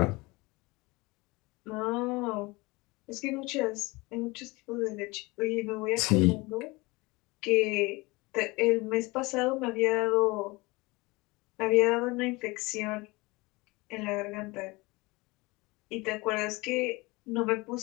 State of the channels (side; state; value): right; quieter; 23.8 dB